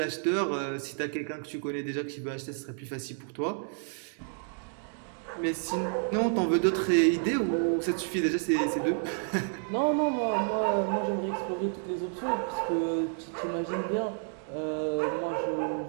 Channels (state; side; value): silent; left; 58 dB below the other